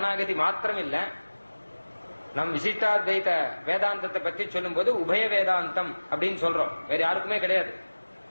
மாத்திரம் இல்ல, நம் விசிஷ்டாத்வைத வேதாந்தத்தை பத்தி சொல்லும் போது உபய வேதாந்தம் அப்படின்னு சொல்றோம். வேற யாருக்குமே கிடையாது.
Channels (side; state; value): both; inverted; correlation -1.00